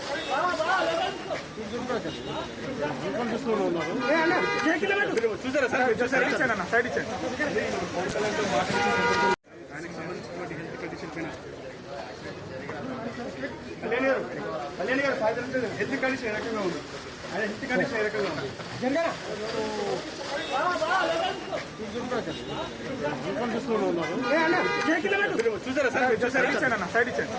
చూసారా సార్? చూసారా? ఇచ్చాను సైడ్ ఇచ్చాను. ఆయనకు సంబంధించినటువంటి హెల్త్ కండిషన్ పైన కళ్యాణ్ గారు సాయంత్రం హెల్త్ కండిషన్ ఏ రకంగా ఉంది? ఆయన హెల్త్ కండిషన్ ఏ రకంగా ఉంది? చూసారా సార్? చూసారా? ఇచ్చాను సైడ్ ఇచ్చాను.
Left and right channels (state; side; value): identical; both; correlation 1.00